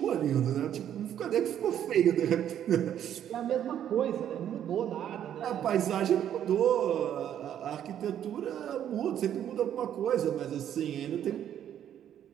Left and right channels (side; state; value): left; quieter; 10.2 dB